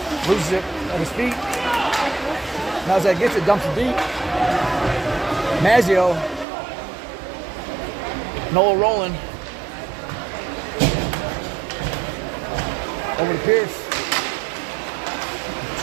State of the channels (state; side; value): drops out; left; at 6.5 s